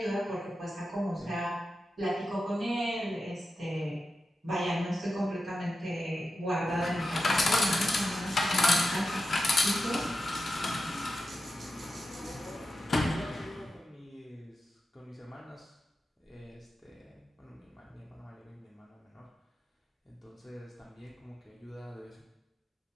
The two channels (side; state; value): both; normal; correlation 0.90